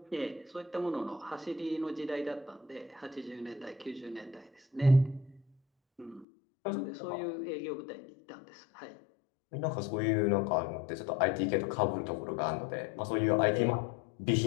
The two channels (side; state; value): right; drops out; at 6.2 s